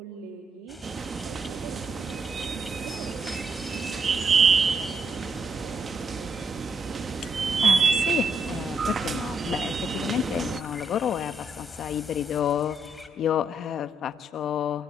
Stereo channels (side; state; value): both; normal; correlation 0.75